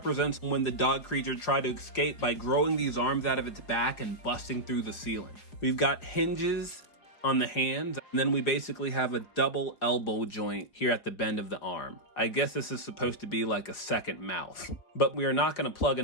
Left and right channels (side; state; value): right; late; 4.9 ms